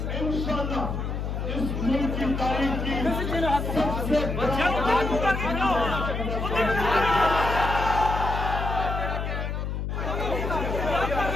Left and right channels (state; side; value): noise; left; hum, 3 dB below the sound